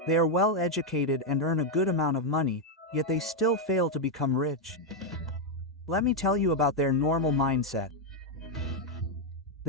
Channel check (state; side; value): normal; both; correlation 0.01